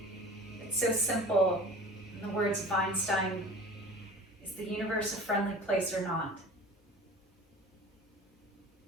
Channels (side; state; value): both; normal; correlation 0.40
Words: It's so simple. In the words of Einstein, is the universe a friendly place or not?